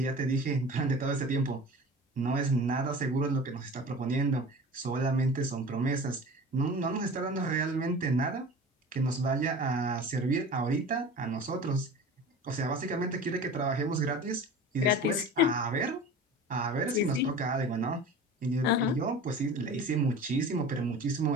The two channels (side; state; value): both; normal; correlation 0.37